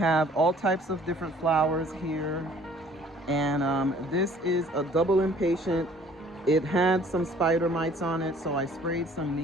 all types of different flowers here. And this is a double impatient. It had some spider mites on it, so I sprayed some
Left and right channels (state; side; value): normal; both; correlation 0.55